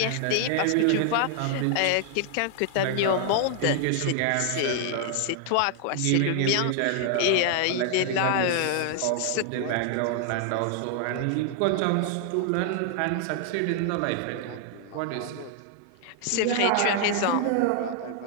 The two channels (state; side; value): different; both; correlation 0.00